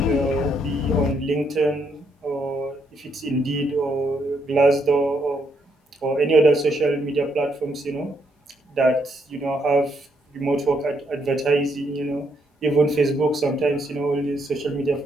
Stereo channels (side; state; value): both; normal; correlation 0.75